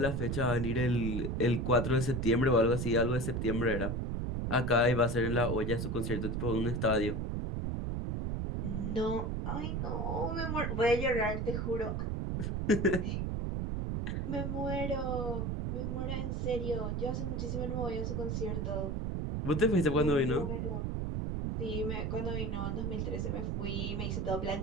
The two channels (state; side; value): noise; right; rumble, 1 dB below the sound